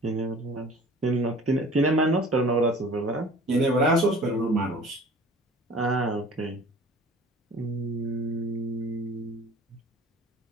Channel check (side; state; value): both; normal; correlation 0.45